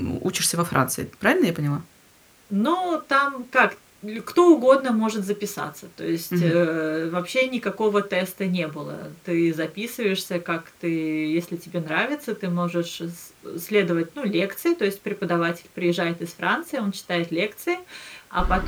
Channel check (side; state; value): both; identical; correlation 1.00